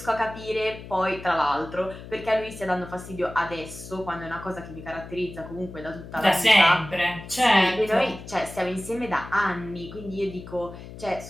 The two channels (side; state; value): left; noise; hum, 14 dB below the sound